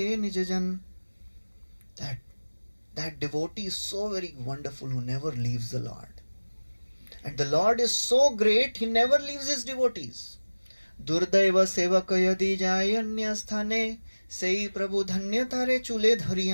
nijajan. That devotee is so very wonderful who never leaves the Lord. And the Lord is so great, he never leaves his devotees. Durdaiva sevaka yadi jayanya sthane, sei prabhu dhanya tare chule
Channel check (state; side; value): inverted; both; correlation -1.00